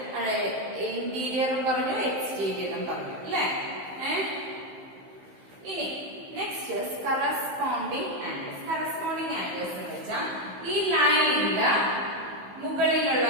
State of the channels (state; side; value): late; left; 15 ms